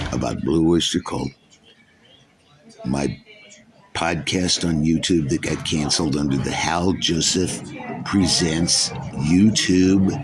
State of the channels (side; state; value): both; identical; correlation 1.00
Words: about Blue Oyster Cult. My podcast on YouTube that got canceled under the Hal Joseph Presents YouTube